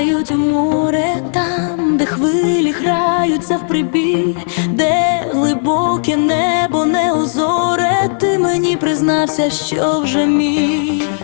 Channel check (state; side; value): silent; right; digital silence